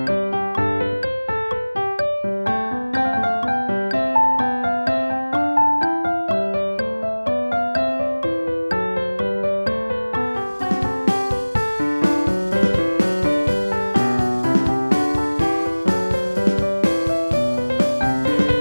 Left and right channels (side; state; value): both; inverted; correlation -1.00